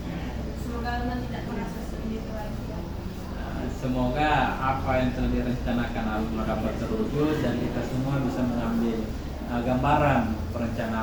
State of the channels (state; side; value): identical; both; correlation 1.00